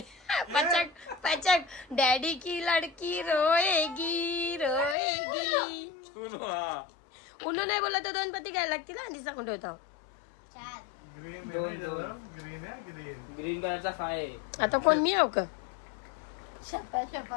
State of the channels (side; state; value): right; drops out; at 5.0 s